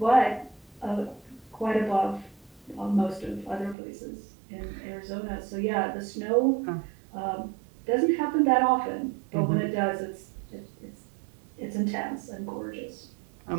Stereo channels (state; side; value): drops out; left; at 3.8 s